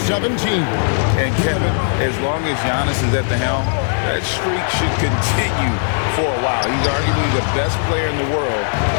And Kevin, as long as Giannis is at the helm, that streak should continue for a while. He's arguably the best player in the world.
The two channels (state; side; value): silent; right; 62 dB below the other